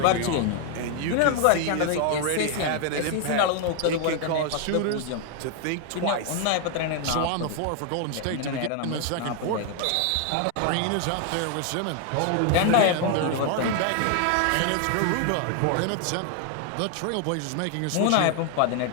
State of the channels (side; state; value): both; different; correlation 0.00